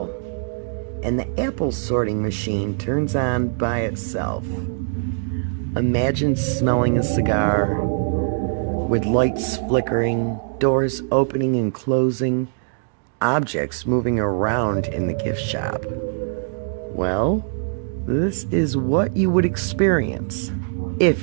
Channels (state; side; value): silent; left; digital silence